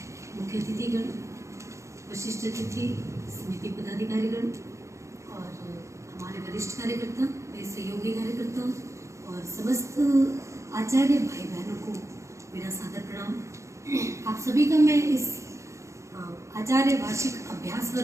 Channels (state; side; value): late; left; 0.14 ms